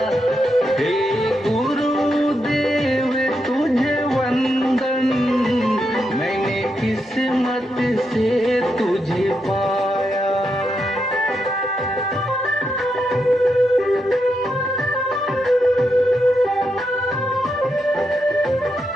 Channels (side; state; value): both; normal; correlation 0.83